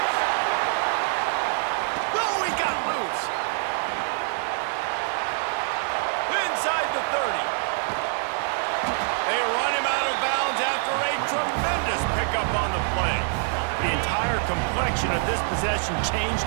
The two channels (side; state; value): left; silent; 61 dB below the other